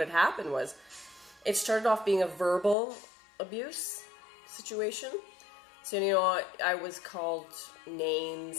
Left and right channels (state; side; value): drops out; right; at 2.8 s